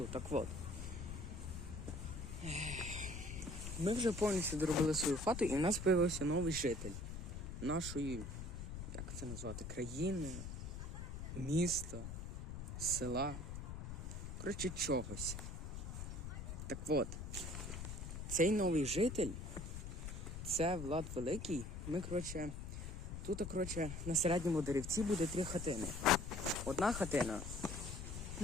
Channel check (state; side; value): noise; left; rumble, 7 dB below the sound